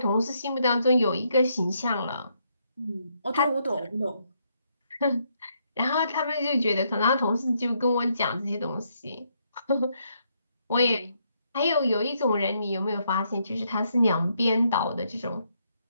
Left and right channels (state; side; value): inverted; both; correlation -0.75